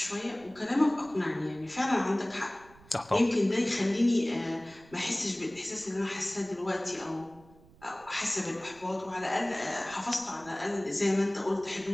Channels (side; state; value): right; noise; rumble, 25 dB below the sound